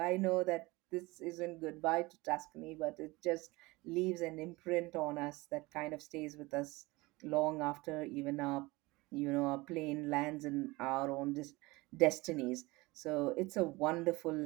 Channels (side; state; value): left; quieter; 22.2 dB